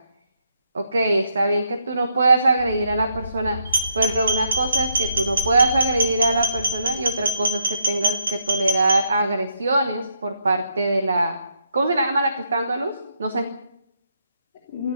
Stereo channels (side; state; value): both; inverted; correlation -0.77